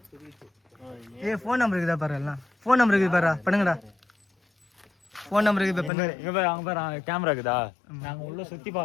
ஏய் ஃபோன் நம்பர் இருக்குதா பாரு எல்லாம். ஃபோன் நம்பர் இருக்குது பாரு பண்ணுங்கடா. ஃபோன் நம்பர் இருக்குது பண்ணுங்க. இங்க பாரு அங்க பாரு கேமரா இருக்குதா? நாங்க உள்ள சுத்தி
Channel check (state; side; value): drops out; right; at 5.9 s